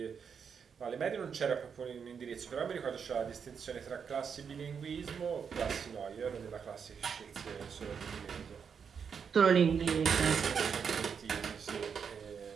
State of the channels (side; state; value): left; quieter; 6.7 dB